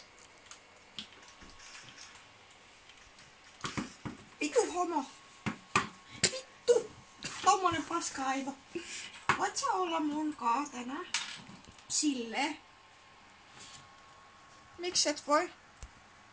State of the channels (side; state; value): both; identical; correlation 1.00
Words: Vitu homo. Vittu. Tommonen paska-aivo. Voit sä olla mun kaa tänään? Silleen. Miksi et voi?